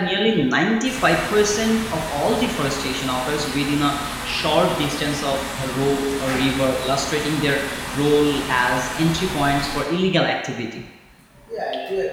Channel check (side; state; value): both; identical; correlation 1.00